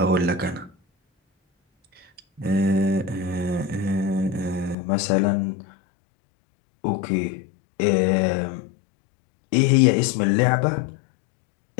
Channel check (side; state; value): right; drops out; at 4.8 s